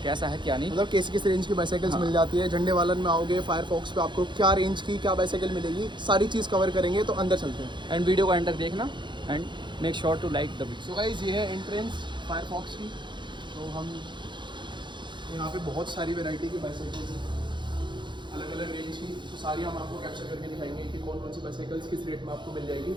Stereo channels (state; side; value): late; left; 0.23 ms